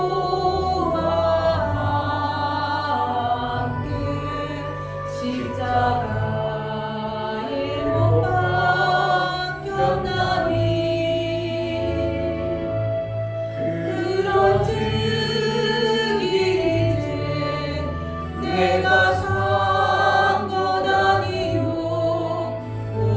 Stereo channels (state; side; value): identical; both; correlation 1.00